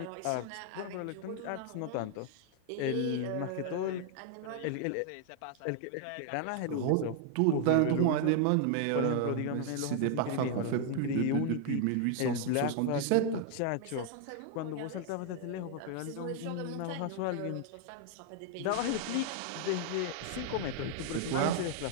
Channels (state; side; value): different; both; correlation 0.00